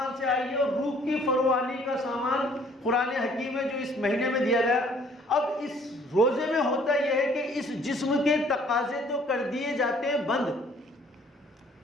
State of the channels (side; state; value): both; normal; correlation 0.59